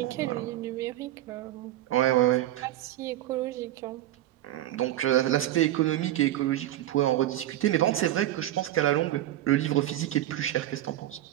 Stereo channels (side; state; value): left; quieter; 13.8 dB